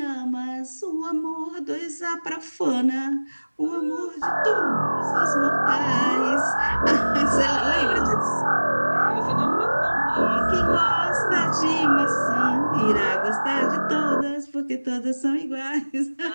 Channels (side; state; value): both; inverted; correlation -1.00